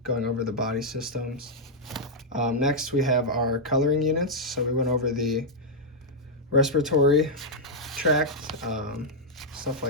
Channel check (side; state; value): both; normal; correlation -0.04